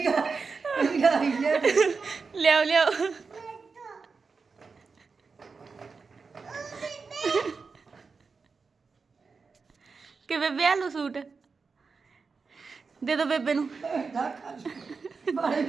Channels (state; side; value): quieter; left; 4.8 dB